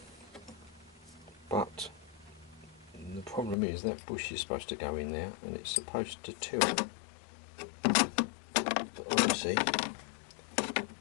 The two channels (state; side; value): drops out; right; at 3.6 s